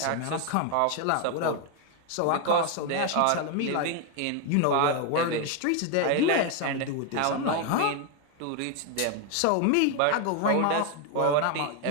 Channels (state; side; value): different; both; correlation 0.01